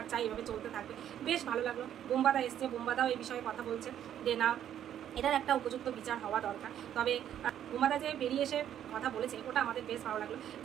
চাই, এভাবে চলতে থাকবে, বেশ ভালো লাগলো। বোম্বাদা এসছে, বোম্বাদাও এই বিষয়ে কথা বলছে যে না, এটার একটা উপযুক্ত বিচার হওয়া দরকার। তবে বোম্বাদা যে বেরিয়ে এসে কথা বলেছে ওটা আমাদের বেশ ভালো লাগলো,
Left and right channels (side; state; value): left; quieter; 10.4 dB